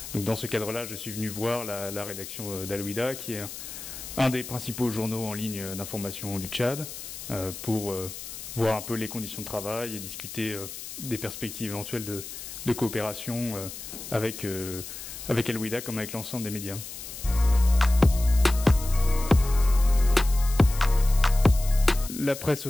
Donc dans ce cadre-là, je suis venu voir la rédaction d'Al-Wehda, qui est un des principaux journaux en ligne d'information du Tchad, pour voir un peu les conditions de travail et discuter des perspectives éventuelles de coopération avec Al-Wehda comme avec l'ensemble des médias. La presse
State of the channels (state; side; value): noise; left; hiss, 11 dB below the sound